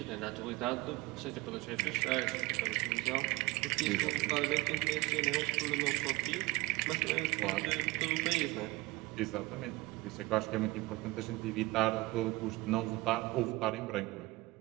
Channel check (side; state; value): left; quieter; 21.3 dB